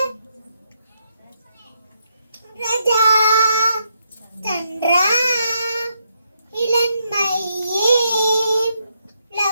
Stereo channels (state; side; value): inverted; both; correlation -0.79